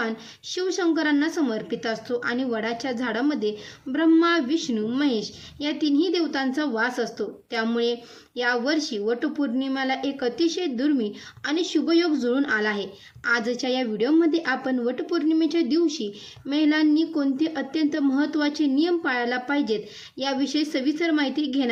शिवशंकरांना समर्पित असतो आणि वडाच्या झाडामध्ये ब्रह्मा, विष्णू, महेश या तिन्ही देवतांचा वास असतो। त्यामुळे या वर्षी वटपौर्णिमेला एक अतिशय दुर्मिळ आणि शुभयोग जुळून आला आहे। आजच्या या व्हिडिओमध्ये आपण वटपौर्णिमेच्या दिवशी महिलांनी कोणते अत्यंत महत्त्वाचे नियम पाळायला पाहिजेत याविषयी सविस्तर माहिती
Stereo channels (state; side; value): identical; both; correlation 1.00